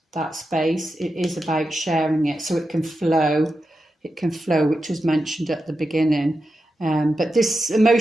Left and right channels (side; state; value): both; normal; correlation 0.89